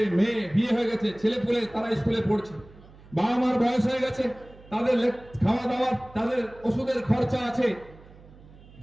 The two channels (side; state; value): right; noise; hum, 22 dB below the sound